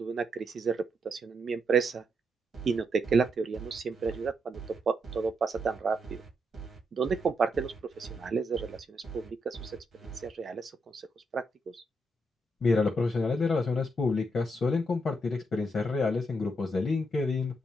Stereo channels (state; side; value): normal; both; correlation 0.79